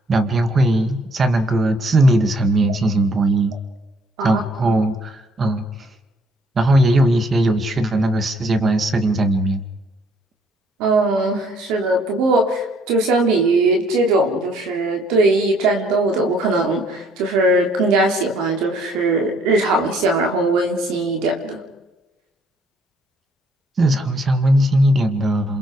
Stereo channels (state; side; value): normal; both; correlation 0.64